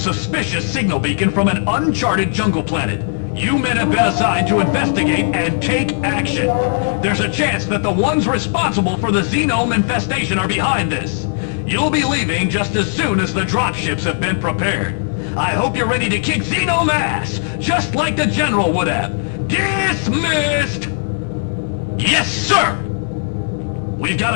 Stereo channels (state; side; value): silent; right; digital silence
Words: signal beacon from an uncharted jungle planet. You men have been assigned to investigate and take action. There's a chance that the ones responsible for the xenome infestation are behind this. You'll be leaving just as soon as the dropships have been prepared. I hope you're ready to kick xenome ass, just like the general would have. Dismissed! Yes, sir! We've